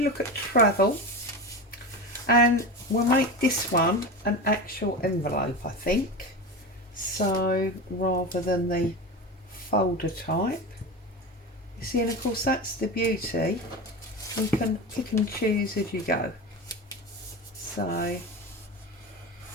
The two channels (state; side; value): normal; both; correlation 0.24